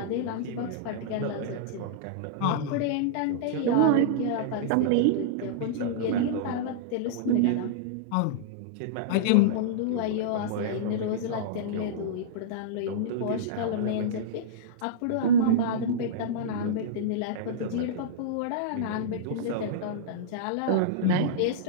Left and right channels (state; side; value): different; both; correlation -0.03